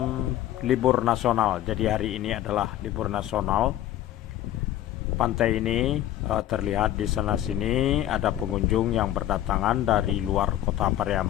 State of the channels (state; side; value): quieter; right; 12.9 dB